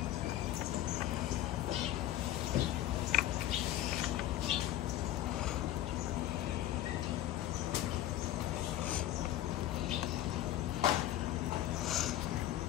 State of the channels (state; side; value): quieter; right; 13.5 dB